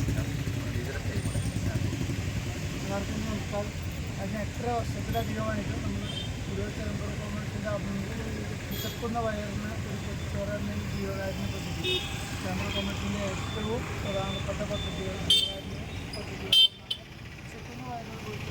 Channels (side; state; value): both; identical; correlation 1.00